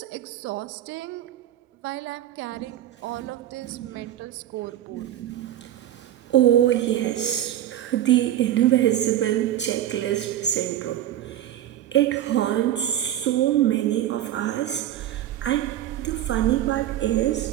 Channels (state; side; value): quieter; left; 12.2 dB